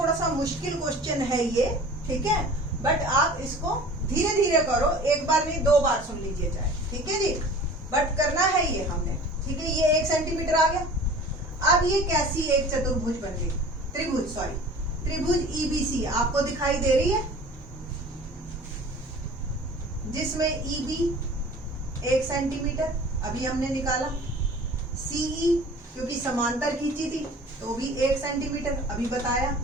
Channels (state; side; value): normal; both; correlation 0.43